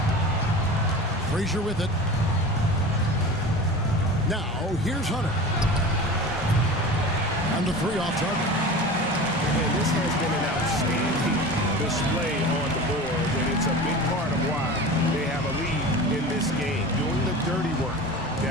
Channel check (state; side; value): normal; both; correlation 0.34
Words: Frazier with it. Now here's Hunter. And the three off target. And this has been an outstanding display on the board, and it's a big part of why they have a lead in this game, doing the dirty work